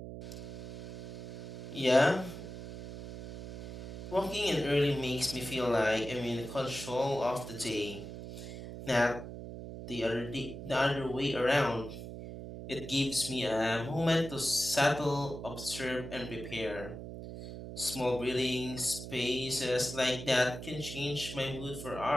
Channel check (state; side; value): noise; right; hum, 9 dB below the sound